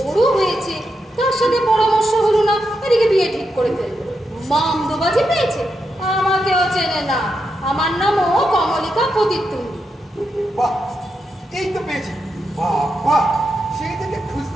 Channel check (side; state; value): both; normal; correlation 0.85